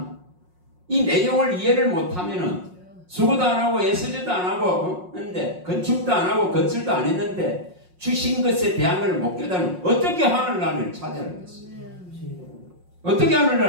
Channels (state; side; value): late; left; 5.6 ms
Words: 이 내용을 이해를 못하면은 수고도 안 하고 애쓰지도 안 하고 했는데 건축도 안 하고 건설도 안 했는데 주신 것에 대한 걸 못 깨달으면 어떻게 하늘나라를 차지하겠어요? 어떻게